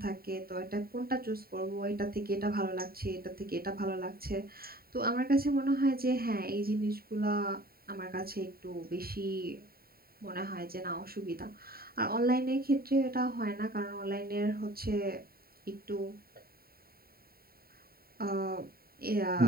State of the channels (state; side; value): late; left; 0.44 ms